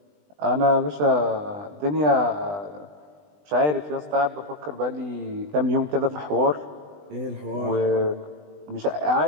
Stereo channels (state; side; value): late; left; 20 ms